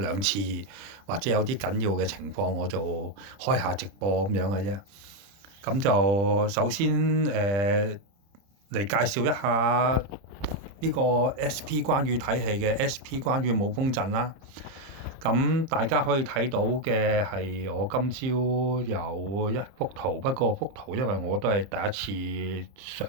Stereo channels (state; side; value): late; left; 30 ms